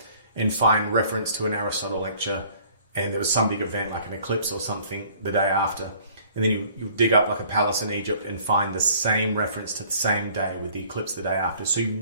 and find reference to an Aristotle lecture, and there was some big event like an eclipse or something the day after. And then you dig up like a palace in Egypt and find the same reference to the same day with the eclipse the day after. So you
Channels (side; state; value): both; inverted; correlation -0.55